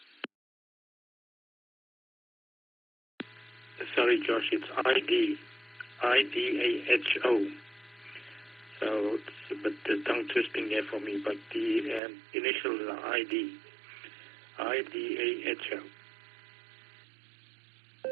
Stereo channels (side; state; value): left; drops out; at 12.0 s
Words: Sorry, Josh, it's IDAHO. So, but the tongue twisting there for me, but the initials are IDAHO.